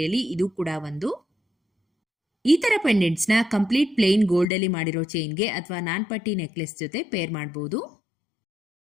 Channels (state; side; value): drops out; right; at 4.5 s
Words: ಇದು ಕೂಡ ಒಂದು. ಈ ತರ ಪೆಂಡೆಂಟ್ಸ್ ನ ಕಂಪ್ಲೀಟ್ ಪ್ಲೇನ್ ಗೋಲ್ಡ್ ಅಲ್ಲಿ ಮಾಡಿರೋ ಚೈನ್ಗೆ ಅಥವಾ ನಾನ್ಪಟ್ಟಿ ನೆಕ್ಲೆಸ್ ಜೊತೆ ಪೇರ್ ಮಾಡಬಹುದು.